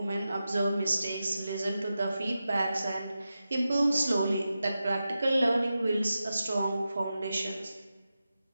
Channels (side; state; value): both; inverted; correlation -0.91